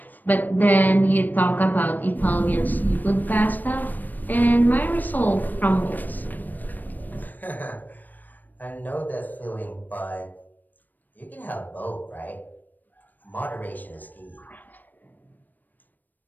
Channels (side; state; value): right; late; 0.088 ms